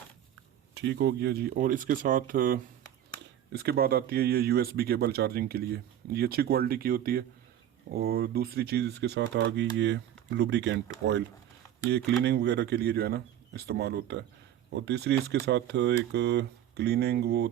ठीक हो गया जी। और इसके साथ इसके बाद आती है ये यूएसबी केबल चार्जिंग के लिए। ये अच्छी क्वालिटी की होती है। और दूसरी चीज़ इसके साथ आ गई ये लुब्रिकेंट ऑयल। ये क्लीनिंग वगैरह के लिए जो है ना इस्तेमाल होता है। और तीसरी इसके साथ एक क्लीनिंग वो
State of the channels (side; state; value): left; quieter; 11.2 dB